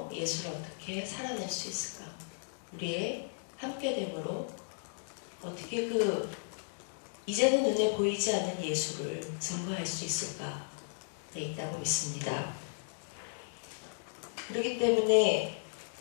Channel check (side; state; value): right; silent; digital silence